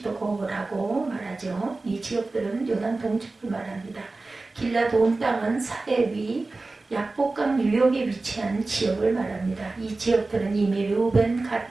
말하죠. 이 지역들은 요단 동쪽을 말합니다. 길르앗 온 땅은 사해 위 약복강 유역에 위치한 지역을 말합니다. 이 지역들은 이미 르우벤,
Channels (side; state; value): left; quieter; 3.4 dB